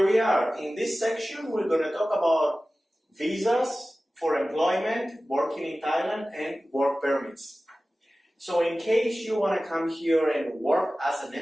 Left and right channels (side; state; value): both; normal; correlation 0.96